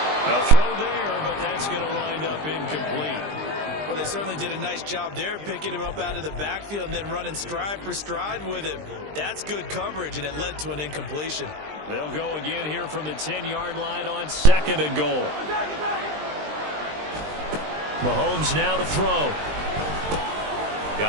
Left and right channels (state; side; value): late; left; 20 ms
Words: A throw there, but that's going to wind up incomplete. Well, they certainly did a nice job there, picking him up out of the backfield and then running stride for stride with him. That's good coverage, and it led to an incompletion. They'll go again here from the 10-yard line on 2nd and goal. Mahomes now to throw.